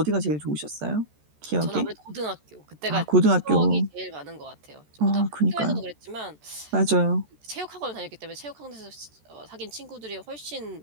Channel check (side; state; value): left; late; 14 ms